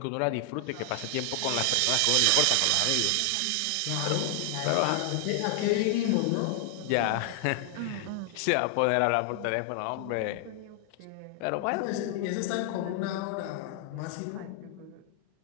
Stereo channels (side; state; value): both; different; correlation 0.00